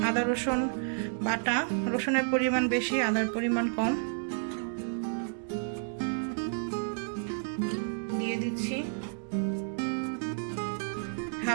আদা রসুন বাটা। রসুনের পরিমাণ বেশি, আদার পরিমাণ কম। দিয়ে দিচ্ছি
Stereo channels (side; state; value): left; silent; digital silence